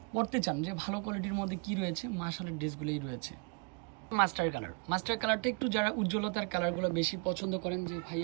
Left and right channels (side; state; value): left; quieter; 33.0 dB